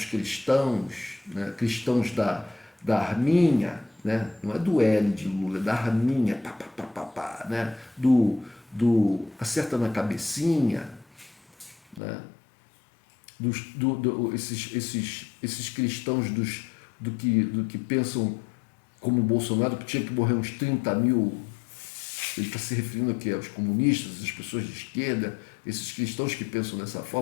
cristãos, né, cristãos da Arminha, né, não é do L de Lula, é da Arminha, né, do acerta na cabecinha, né, esses cristãos do que pensam como o Bolsonaro, que tinha que morrer uns 30 mil. Ele está se referindo aqui aos comunistas, às pessoas de esquerda, esses cristãos que pensam dessa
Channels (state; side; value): drops out; right; at 12.0 s